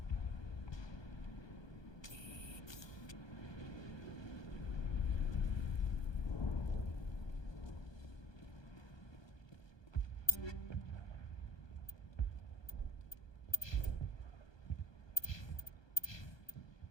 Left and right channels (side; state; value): right; late; 1.2 ms